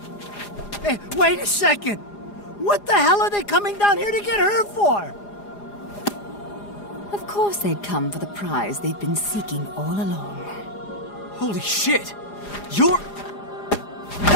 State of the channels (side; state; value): right; late; 4.9 ms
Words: wait a second! What the hell are they coming down here to get her for? Of course they'd come for the prize they've been seeking all along. Holy shit! You're...